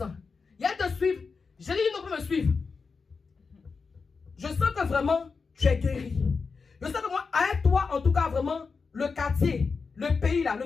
Il y a de suivre. J'ai dit, non, peut me suivre. Je sens que vraiment, tu es guéri. Je sens que moi, avec toi, en tout cas, vraiment, le quartier, le pays, là, le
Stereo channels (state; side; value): quieter; right; 4.9 dB